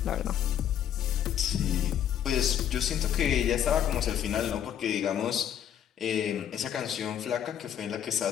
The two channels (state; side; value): quieter; right; 9.7 dB